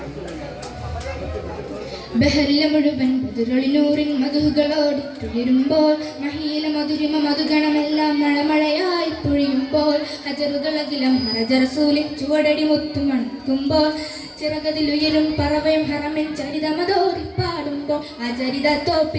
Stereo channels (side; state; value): both; identical; correlation 1.00